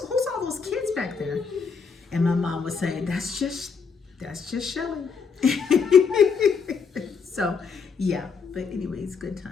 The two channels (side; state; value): right; quieter; 5.7 dB